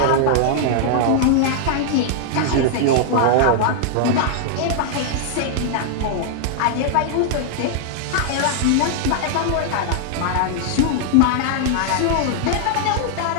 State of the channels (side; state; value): both; different; correlation -0.01